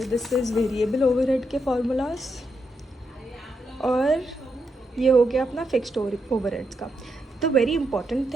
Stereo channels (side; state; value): both; normal; correlation 0.82